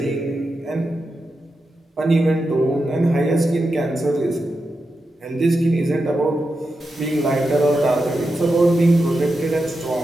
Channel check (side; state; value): both; normal; correlation 0.89